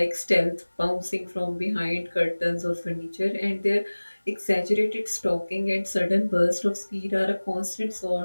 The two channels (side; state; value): both; inverted; correlation -1.00